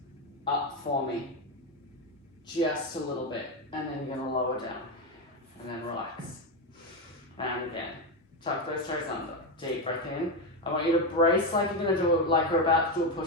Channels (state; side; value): normal; both; correlation 0.10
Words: up for me. Just a little bit. And then you're going to lower down. And then relax. And again. Tuck those toes under. Deep breath in. I want you to brace like you're going to do it, like we're about to do a